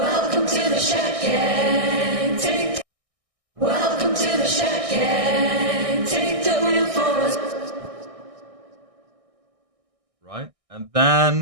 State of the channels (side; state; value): left; late; 1.6 ms